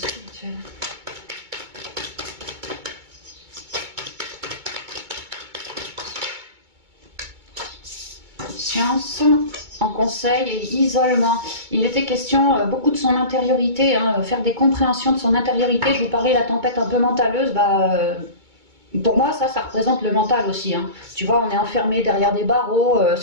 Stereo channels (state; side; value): late; left; 2.2 ms